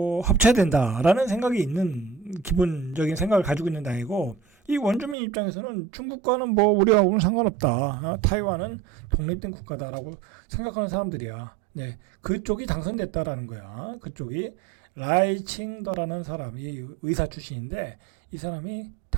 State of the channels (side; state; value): left; drops out; at 5.2 s